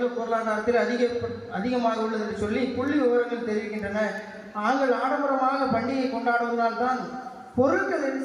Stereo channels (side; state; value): both; identical; correlation 1.00